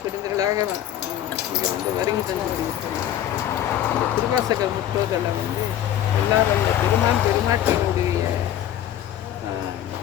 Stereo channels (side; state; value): right; quieter; 11.6 dB